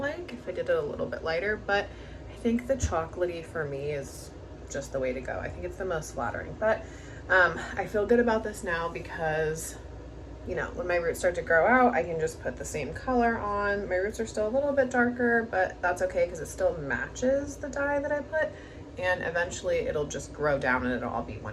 if I did it a little bit lighter, but I think the chocolatey for me is just the way to go. I think it's the most flattering, but I feel good about this now because, you know, when my roots start to grow out, I can just put the same color on. My roots are still a little bit darker, but that's okay because it still matches the dye that I put, and eventually it'll just grow down and it'll all be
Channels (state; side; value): identical; both; correlation 1.00